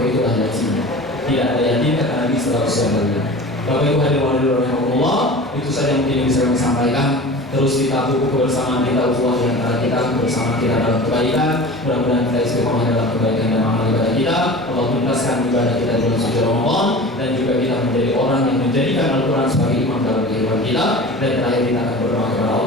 itu adalah yatim. Tidak ada yatim kata Nabi setelah usia balik. Bapak Ibu hadirin rahimahullah, itu saja yang mungkin bisa kami sampaikan. Terus kita buku kebersamaan kita, ukhuwah di antara kita, bersama kita dalam kebaikan. Mudah-mudahan kita istiqomah dalam kebaikan dan amal ibadah kita. Allah tuntaskan ibadah kita di bulan suci Ramadan, dan juga kita menjadi orang yang menjadikan Al-Quran sebagai imam dalam kehidupan kita. Dan terakhir kita akan berdoa kepada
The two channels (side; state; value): both; normal; correlation 0.37